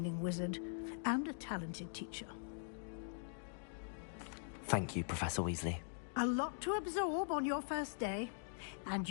wizard, and a talented teacher. Thank you, Professor Weasley. A lot to absorb on your first day, and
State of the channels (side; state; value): right; silent; digital silence